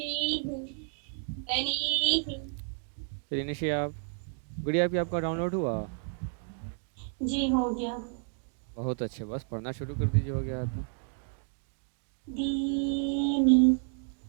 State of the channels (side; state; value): left; silent; 57 dB below the other